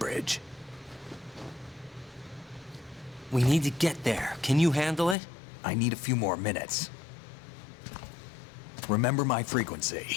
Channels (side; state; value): right; drops out; at 5.2 s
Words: We need to get there. Can you handle it? I need a few more minutes. Remember my